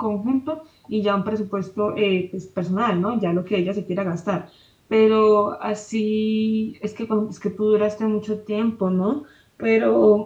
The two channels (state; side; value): identical; both; correlation 1.00